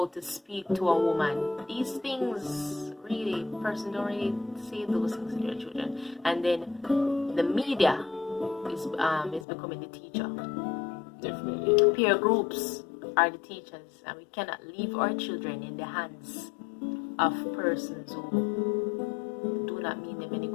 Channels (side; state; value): right; drops out; at 9.5 s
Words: to speak to a woman. These things really, person don't really say those things to their children. And then the media is becoming the teacher. Definitely. Peer groups are the teachers, and we cannot leave our children in the hands of persons who do not mean them any